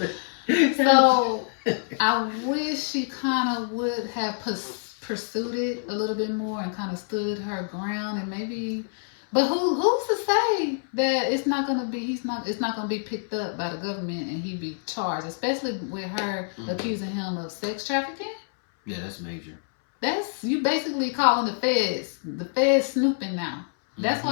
so I wish she kind of would have pursued it a little bit more and kind of stood her ground and maybe. But who's to say that it's not gonna be picked up by the government and he be charged, especially with her accusing him of sex trafficking? Yeah, that's major. That's you basically calling the feds snooping now. That's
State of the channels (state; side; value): silent; right; 60 dB below the other